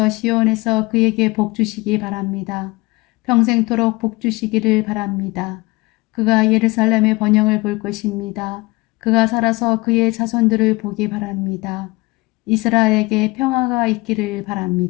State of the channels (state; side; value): quieter; right; 23.3 dB